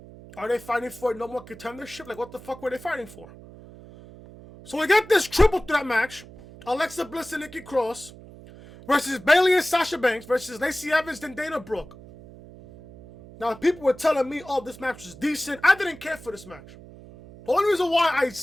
Are they fighting for no more contendership? Like, what the fuck were they fighting for? So we got this triple threat match. Alexa Bliss and Nikki Cross versus Bayley and Sasha Banks versus Lacey Evans and Dana Brooke. Now, people were telling me, oh, this match was decent. I didn't care for this match. The only reason why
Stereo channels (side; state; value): right; noise; hum, 19 dB below the sound